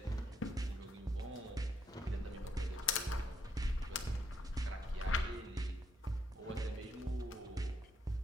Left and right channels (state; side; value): normal; both; correlation 0.76